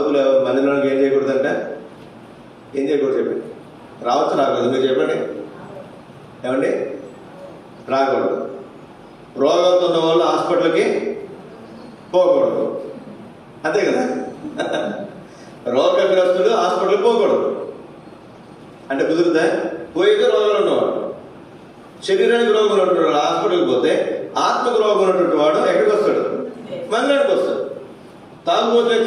మందిరానికి ఏం చేయకూడదంట, ఏం చేయకూడదు చెప్పండి. రావచ్చు రాకూడదు, మీరు చెప్పండి ఏమండి, రాకూడదు. రోగాలతో ఉన్న వాళ్ళు హాస్పిటల్కి పోకూడదు, అంతే కదా. రోగగ్రస్తుడు హాస్పిటల్కి పోకూడదు అంటే కుదురుతా? పోయితే రోగాలు ఉన్నవాడు, శరీరానికి రోగం ఉన్నటువంటి వాడు హాస్పిటల్కి పోతే ఆత్మకు రోగం ఉన్నటువంటి వాడు ఎక్కడికి వస్తాడు? మందిరానికి వస్తాడు. తాగుబోతే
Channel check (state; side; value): identical; both; correlation 1.00